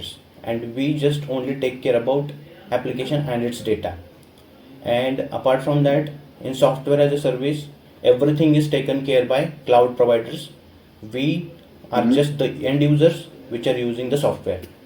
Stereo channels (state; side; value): identical; both; correlation 1.00